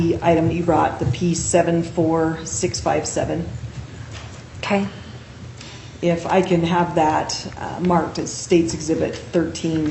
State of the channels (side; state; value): both; identical; correlation 1.00